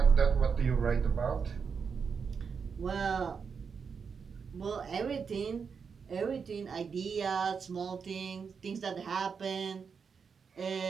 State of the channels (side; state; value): left; quieter; 6.0 dB